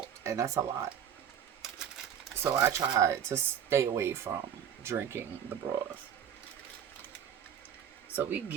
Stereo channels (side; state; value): left; quieter; 8.8 dB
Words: And that's a lot. So, I try to stay away from drinking the broth. So, we